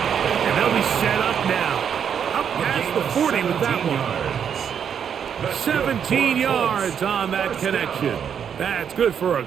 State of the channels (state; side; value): quieter; left; 7.9 dB